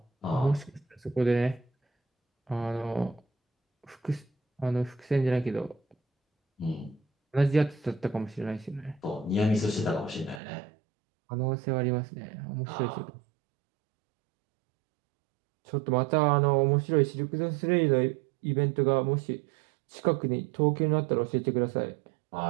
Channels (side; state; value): left; drops out; at 10.4 s